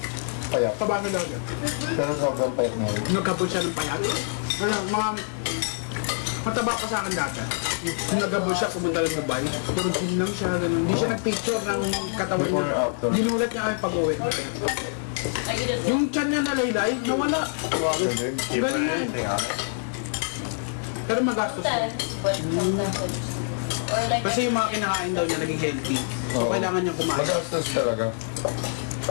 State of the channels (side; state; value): right; silent; digital silence